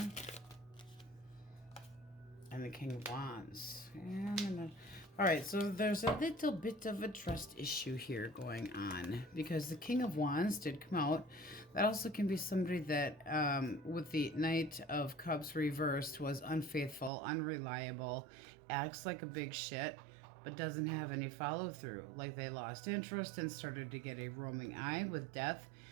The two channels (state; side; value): drops out; left; at 17.1 s